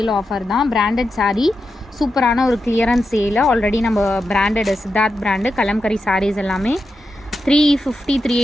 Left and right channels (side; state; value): both; normal; correlation 0.88